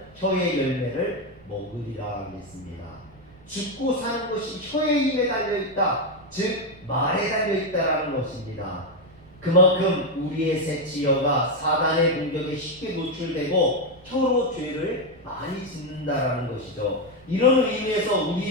혀의 열매를 먹으리라 하겠습니다. 죽고 사는 것이 혀의 힘에 달려있다. 즉 말에 달려있다라는 것입니다. 그만큼 우리의 새치혀가 사단의 공격에 쉽게 노출되고 혀로 죄를 많이 짓는다라는 것이죠. 이런 의미에서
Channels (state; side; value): noise; right; rumble, 26 dB below the sound